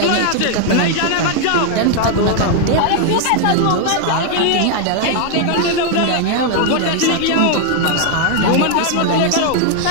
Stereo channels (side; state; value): both; different; correlation 0.00